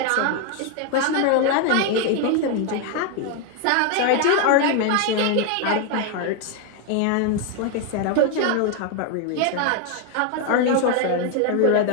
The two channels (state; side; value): different; both; correlation 0.01